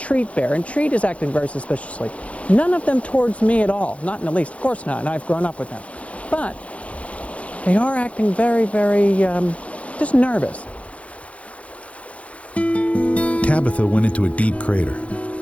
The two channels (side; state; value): right; late; 0.064 ms